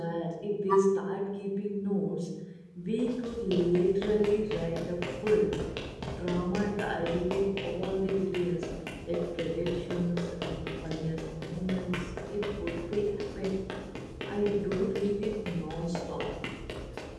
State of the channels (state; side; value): identical; both; correlation 1.00